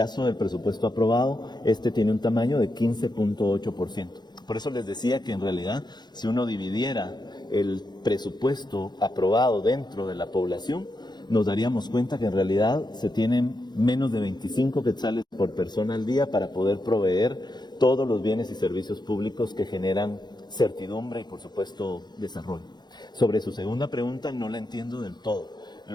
del presupuesto aprobado, este tiene un tamaño de 15.8%. Por eso les decía que en realidad, si uno dividiera el presupuesto aprobado dentro de la población, nos daríamos cuenta que en realidad se tienen menos de 25 quetzales por persona al día para poder proveer todos los bienes y servicios públicos que generan certidumbre y, por supuesto, desarrollo. Sobre su segunda pregunta, no la entiendo del todo.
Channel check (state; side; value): late; right; 0.21 ms